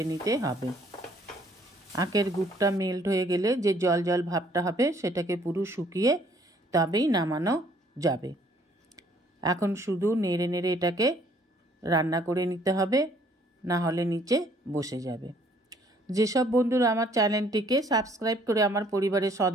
নিতে হবে। আখের গুড়টা মেল্ট হয়ে গেলে যে জল জল ভাবটা হবে সেটাকে পুরো শুকিয়ে তবেই নামানো যাবে। এখন শুধু নেড়ে নেড়ে এটাকে রান্না করে নিতে হবে, না হলে নিচে বসে যাবে। যেসব বন্ধুরা আমার চ্যানেলটিকে সাবস্ক্রাইব করে আমার পরিবারের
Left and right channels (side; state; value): both; normal; correlation 0.62